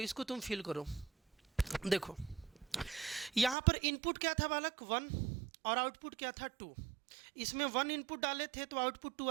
तुम फील करो। देखो यहाँ पर इनपुट क्या था बालक? 1, और आउटपुट क्या था? 2। इसमें 1 इनपुट डाले थे तो आउटपुट 2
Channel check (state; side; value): drops out; left; at 3.6 s